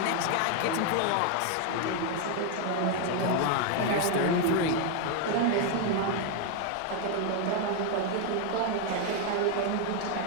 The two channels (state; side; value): different; both; correlation 0.01